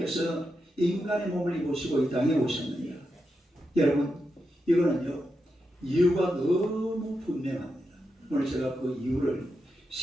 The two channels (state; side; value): normal; both; correlation 0.86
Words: 인간의 몸을 입으시고 이 땅에 오셨느냐? 여러분, 이거는요 이유가 너무 분명합니다. 오늘 제가 그 이유를